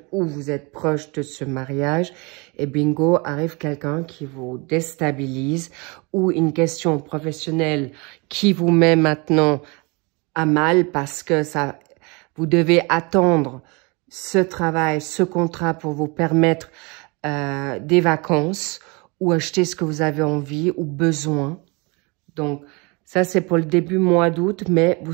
ou vous êtes proche de ce mariage et bingo, arrive quelqu'un qui vous déstabilise ou une question professionnelle qui vous met maintenant à mal parce que ça, vous devez attendre ce travail, ce contrat pour vous permettre des vacances ou acheter ce que vous avez envie ou besoin. Donc, ça, c'est pour le début mois d'août, mais vous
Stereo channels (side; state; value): left; quieter; 28.7 dB